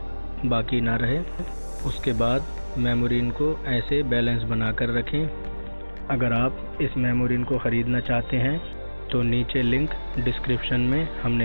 बाकी ना रहे। उसके बाद मेमोरीन को ऐसे बैलेंस बना कर रखें। अगर आप इस मेमोरीन को ख़रीदना चाहते हैं तो नीचे लिंक डिस्क्रिप्शन में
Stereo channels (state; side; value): inverted; both; correlation -1.00